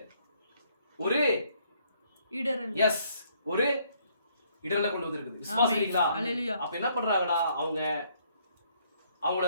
ஒரு இடரலை கொண்டு வந்திருக்குது. விசுவாசிக்கிறீங்களா? அப்ப என்ன பண்றாங்கடா? அவங்கள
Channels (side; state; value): both; inverted; correlation -0.67